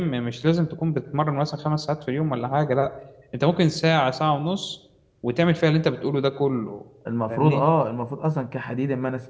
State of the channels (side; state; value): both; identical; correlation 1.00